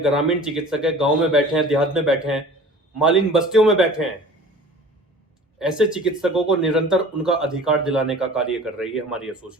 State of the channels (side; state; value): both; normal; correlation 0.43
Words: ग्रामीण चिकित्सक हैं, गांव में बैठे हैं, देहात में बैठे हैं, मालिन बस्तियों में बैठे हैं, ऐसे चिकित्सकों को निरंतर उनका अधिकार दिलाने का कार्य कर रही है हमारी